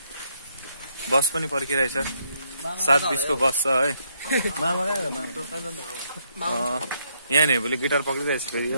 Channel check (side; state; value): both; inverted; correlation -0.73